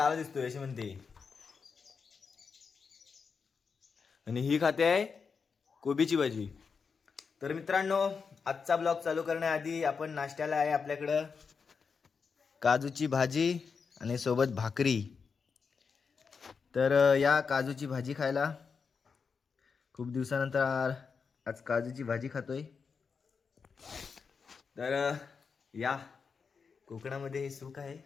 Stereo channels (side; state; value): right; quieter; 5.5 dB